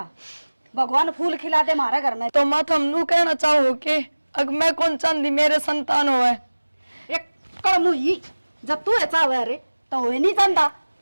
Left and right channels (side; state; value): both; inverted; correlation -1.00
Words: भगवान फूल खिला दे हमारे घर में। तो माँ तुम नू कहना चाहो कि अग मैं कौन चांदी मेरे संतान हो है एक कड़मू ही जब तू ऐसा हुआ रे तो हो नहीं जानता